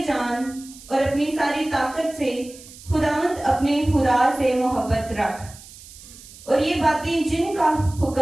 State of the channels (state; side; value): noise; right; hiss, 19 dB below the sound